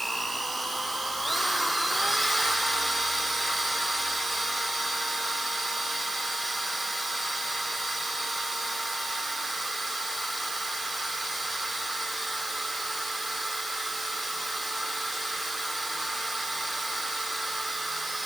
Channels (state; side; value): noise; right; hiss, 8 dB below the sound